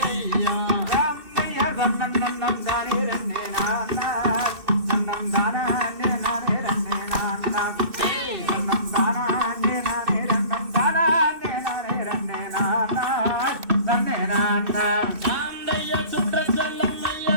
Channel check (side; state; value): left; late; 2.6 ms